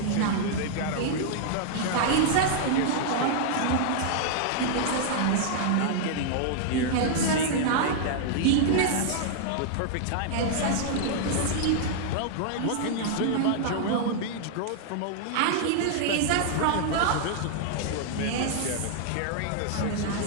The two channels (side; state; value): both; different; correlation -0.01